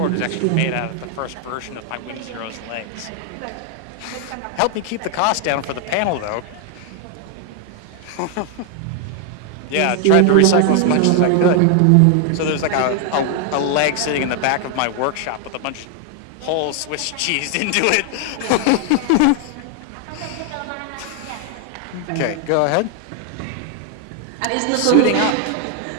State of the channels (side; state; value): both; different; correlation 0.00